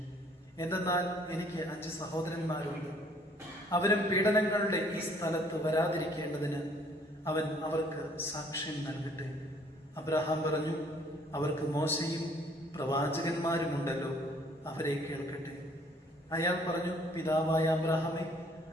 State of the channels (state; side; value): normal; both; correlation 0.60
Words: എന്തെന്നാൽ എനിക്ക് 5 സഹോദരന്മാരുണ്ട്. അവരും പീഡനങ്ങളുടെ ഈ സ്ഥലത്ത് വരാതിരിക്കേണ്ടതിന് അവൻ അവർക്ക് സാക്ഷ്യം നൽകട്ടെ. അബ്രഹാം പറഞ്ഞു, അവർക്ക് മോശയും പ്രവാചകന്മാരുമുണ്ടല്ലോ, അവരെ കേൾക്കട്ടെ. അയാൾ പറഞ്ഞു, പിതാവായ അബ്രഹാമേ,